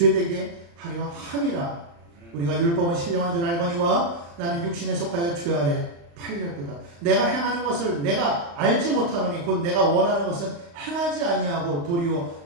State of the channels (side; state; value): left; late; 35 ms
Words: 하려 함이라. 우리가 율법은 신령한 줄 알거니와 나는 육신에 속하여 죄 아래 팔렸도다. 내가 행하는 것을 내가 알지 못하노니 곧 내가 원하는 것은 행하지 아니하고 도리어